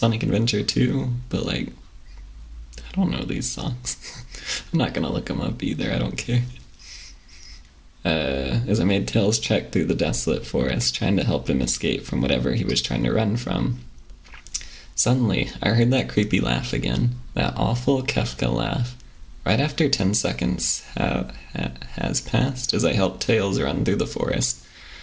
Adventure 2, but like, I don't know these songs. I'm not gonna look them up either, I don't care. As I made Tails trek through the desolate forest, trying to help him escape from whatever he was trying to run from. Suddenly, I heard that creepy laugh again, that awful Kefka laugh. Right after 10 seconds has passed as I helped Tails run through the forest.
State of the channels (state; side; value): identical; both; correlation 1.00